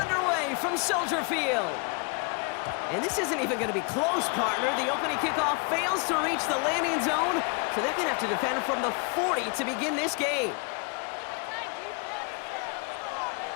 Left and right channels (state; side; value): quieter; right; 34.1 dB